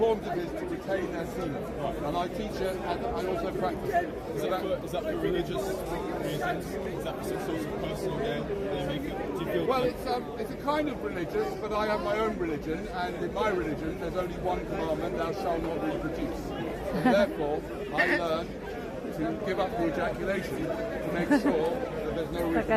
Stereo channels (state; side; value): identical; both; correlation 1.00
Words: it is to retain their semen. And I teach it and I also practice it. Is that for religious reasons? Is that for some sort of personal gain? Do you feel Well, it's a kind of religious, but I have my own religion, and in my religion there's only one commandment, thou shalt not reproduce. And therefore, I learn to give up the ejaculation to make sure that there's no Like reproduction. I